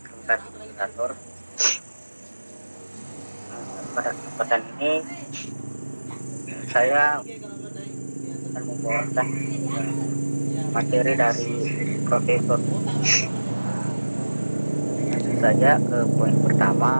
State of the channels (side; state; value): both; inverted; correlation -1.00